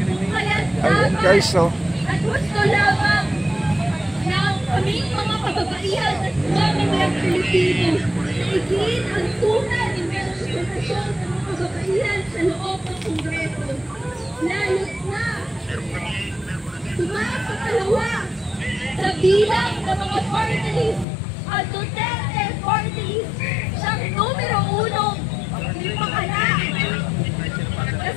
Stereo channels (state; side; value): drops out; right; at 21.1 s